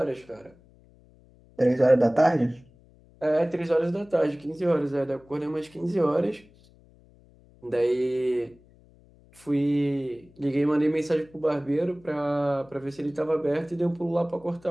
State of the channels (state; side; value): noise; left; hum, 28 dB below the sound